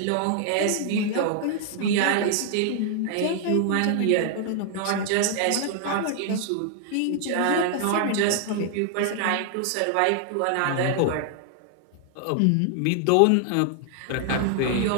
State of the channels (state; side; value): different; both; correlation 0.00